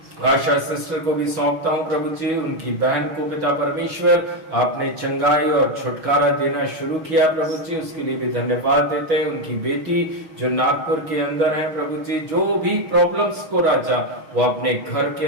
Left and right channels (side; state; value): left; late; 6.2 ms